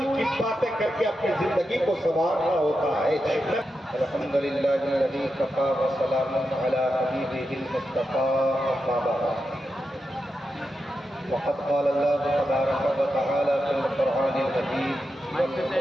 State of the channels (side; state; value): both; normal; correlation 0.88